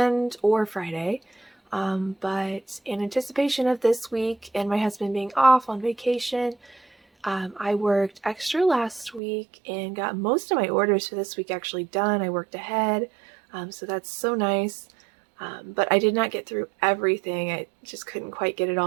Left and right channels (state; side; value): drops out; left; at 9.2 s